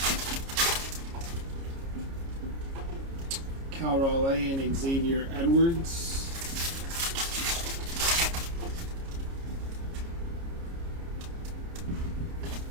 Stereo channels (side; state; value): left; late; 29 ms